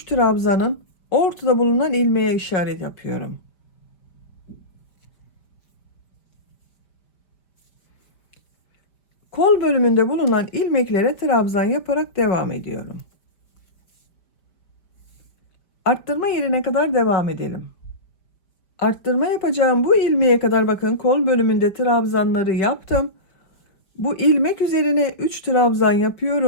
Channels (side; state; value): right; late; 4.8 ms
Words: trabzanın ortada bulunan ilmeğe işaret yapıyorum. Kol bölümünde bulunan ilmeklere trabzan yaparak devam ediyorum. Arttırma yerine kadar devam edelim. Arttırma yapacağım bu ilmeğe kadar bakın kol bölümünde trabzanları yaptım. Bu ilmek üzerine 3 trabzan